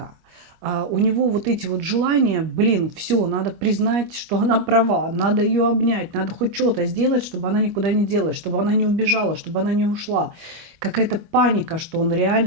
У него вот эти вот желания, блин, все, надо признать, что она права, надо ее обнять, надо хоть что-то сделать, чтобы она никуда не делась, чтобы она не убежала, чтобы она не ушла. Какая-то паника, что он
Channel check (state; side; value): late; left; 25 ms